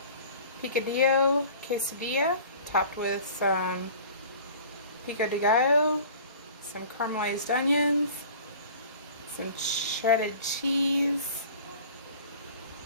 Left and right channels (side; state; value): both; inverted; correlation -0.44